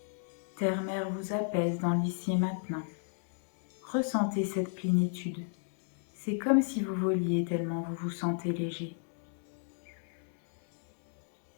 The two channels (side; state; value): right; silent; digital silence